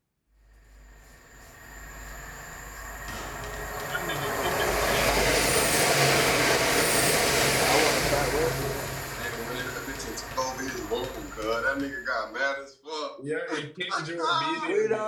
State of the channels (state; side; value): identical; both; correlation 1.00